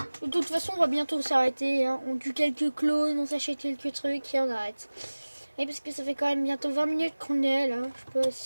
De toute façon, on va bientôt s'arrêter. Hein. On tue quelques clones, on s'achète quelques trucs et on arrête. Et parce que ça fait quand même bientôt 20 minutes qu'on est là. Je sais pas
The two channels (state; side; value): inverted; both; correlation -1.00